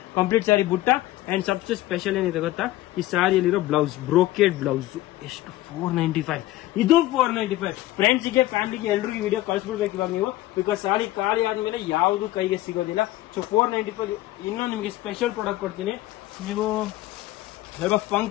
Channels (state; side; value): quieter; right; 16.3 dB